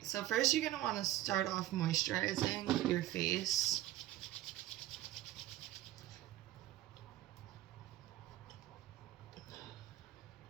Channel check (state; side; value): quieter; left; 14.8 dB